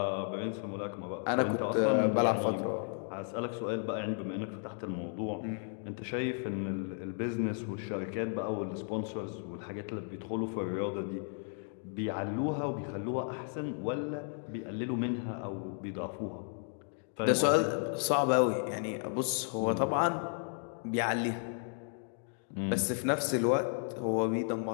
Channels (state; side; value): silent; right; 55 dB below the other